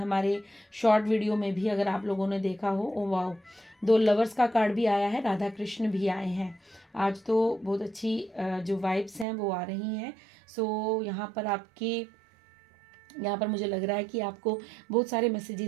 शॉर्ट वीडियो में भी अगर आप लोगों ने देखा हो, ओ वाओ, 2 लवर्स का कार्ड भी आया है, राधा कृष्ण भी आए हैं। आज तो बहुत अच्छी जो वाइब्स हैं वो आ रही हैं। सो यहाँ पर मुझे लग रहा है कि आपको बहुत सारे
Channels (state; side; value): drops out; left; at 9.2 s